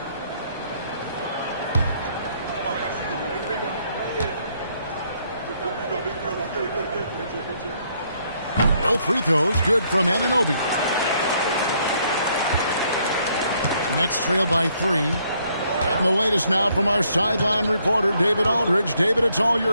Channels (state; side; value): inverted; both; correlation -0.70